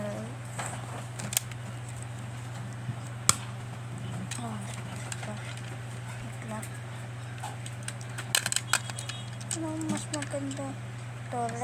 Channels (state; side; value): identical; both; correlation 1.00